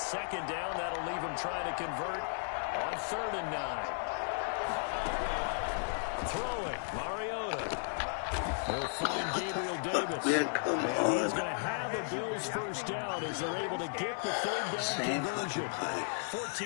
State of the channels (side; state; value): right; silent; digital silence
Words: down, that'll leave him trying to convert on 3rd and 9. Throwing, Mariota. They'll find Gabriel Davis. And he's going to have a Bills 1st down as they're able to get the 3rd down conversion.